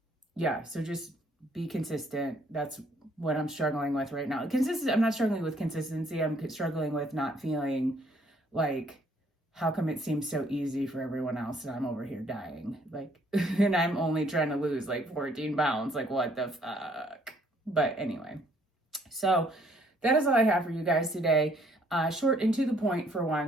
yeah, so just be consistent. That's what I'm struggling with right now. I'm not struggling with consistency. I'm struggling with not feeling like, how come it seems so easy for everyone else and I'm over here dying? Like, and I'm only trying to lose like 14 pounds. Like, what the fuck? But anyway, so that is all I have for you guys today. Short and to the point for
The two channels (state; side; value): normal; both; correlation 0.64